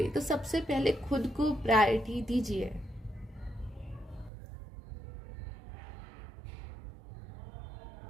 तो सबसे पहले खुद को प्रायोरिटी दीजिए।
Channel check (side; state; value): left; drops out; at 4.3 s